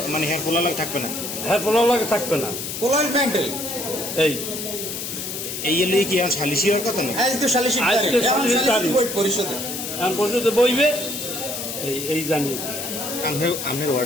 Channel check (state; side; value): noise; left; hiss, 6 dB below the sound